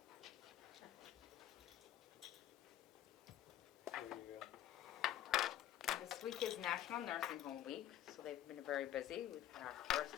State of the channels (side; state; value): right; quieter; 12.3 dB